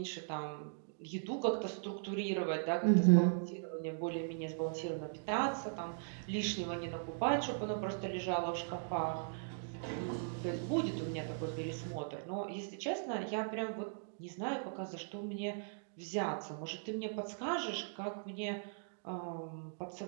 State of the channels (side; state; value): left; silent; digital silence